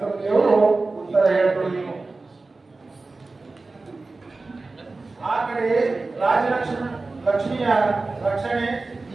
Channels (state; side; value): quieter; left; 3.5 dB